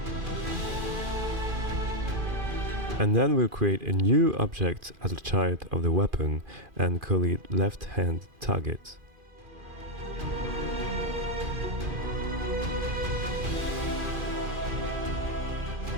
And then we'll create a new object as a child of the weapon and call it left hand target.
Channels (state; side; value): late; left; 2.5 ms